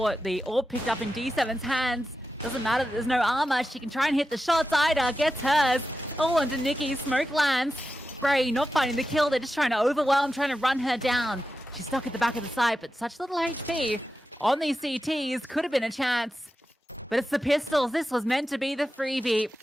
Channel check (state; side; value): normal; both; correlation 0.91